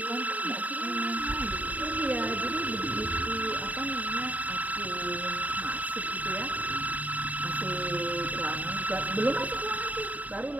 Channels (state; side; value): late; left; 0.073 ms